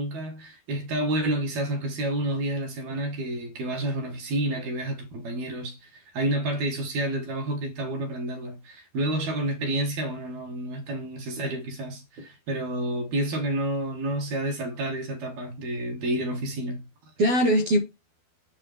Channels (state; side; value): late; left; 12 ms